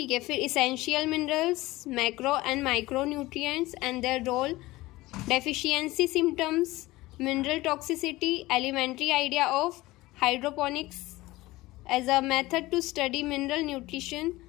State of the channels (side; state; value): right; quieter; 19.0 dB